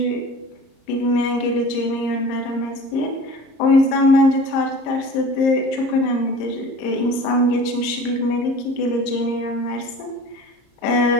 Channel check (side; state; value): right; late; 34 ms